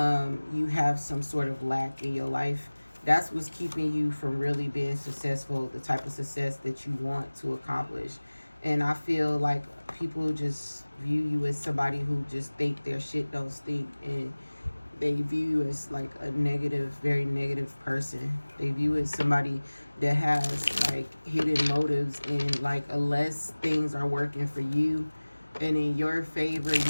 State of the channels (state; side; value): inverted; both; correlation -1.00